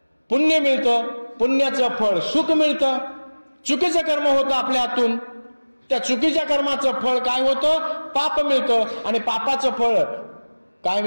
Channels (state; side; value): inverted; both; correlation -1.00